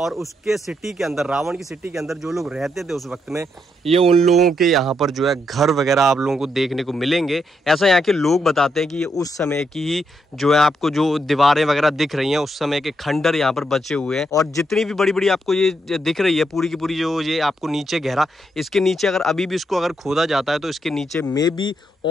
उसके सिटी के अंदर, रावण की सिटी के अंदर जो लोग रहते थे उस वक्त में, ये उन लोगों के यहाँ पर जो है घर वगैरह आप लोगों को देखने को मिलेंगे। ऐसा यहाँ के लोग बताते हैं कि ये उस समय की ही जो है आपको जो दीवारें वगैरह दिख रही हैं उस समय के खंडर यहाँ पर बचे हुए हैं। और जितनी भी बड़ी बड़ी आपको ये दिख रही है पूरी की पूरी, जो ये आपको नीचे गहरा, इसके नीचे अगर अभी भी इसको अगर खोदा जाता है तो इसके नीचे में भी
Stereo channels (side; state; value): both; normal; correlation 0.79